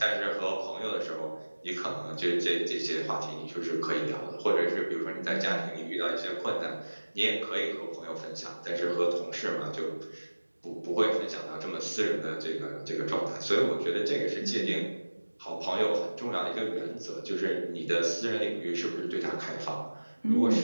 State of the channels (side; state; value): both; inverted; correlation -1.00